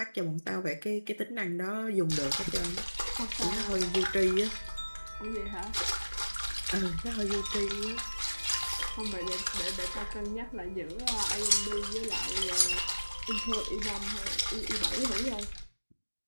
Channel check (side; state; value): both; inverted; correlation -1.00